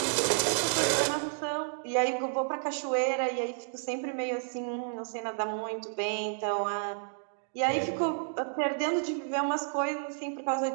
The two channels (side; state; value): left; silent; digital silence